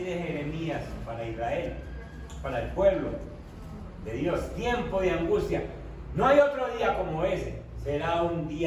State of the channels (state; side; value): identical; both; correlation 1.00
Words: Jeremías, para Israel, para el pueblo de Dios. Tiempo de angustia. No hay otro día como ese. Será un